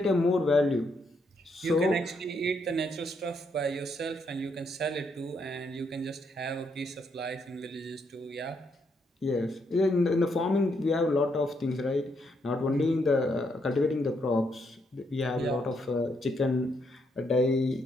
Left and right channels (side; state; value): both; normal; correlation 0.76